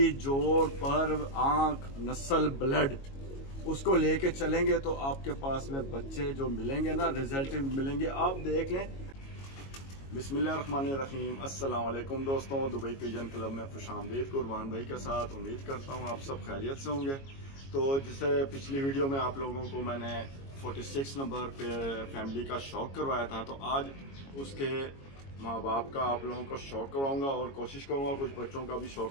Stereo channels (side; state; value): right; late; 22 ms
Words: जोड़, पर, आंख, नस्ल, ब्लड उसको लेके चलेंगे तो आपके पास में बच्चे जो मिलेंगे ना, रिजल्ट मिलेंगे। आप देख लें। बिस्मिल्लाहिर्रहमानिर्रहीम। अस्सलाम वालेकुम दोस्तों, दुबई पिजन क्लब में खुशामदीद कुर्बान भाई के साथ। उम्मीद करता हूँ आप सब खैरियत से होंगे। तो जैसे पिछली वीडियो में आप लोगों को मैंने 46 नंबर पे फैमिली का शौक करवाया था, तो आज उसके माँ बाप का आप लोगों को शौक करवाऊंगा और कोशिश करूंगा कुछ बच्चों का भी